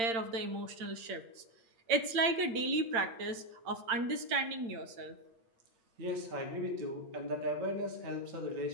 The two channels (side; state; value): left; late; 8.8 ms